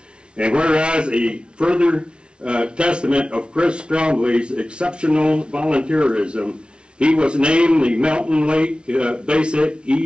And whereas a further testament of Chris Trombley's exceptional volunteerism, he was named the Mountain Lake Basic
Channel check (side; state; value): left; late; 0.057 ms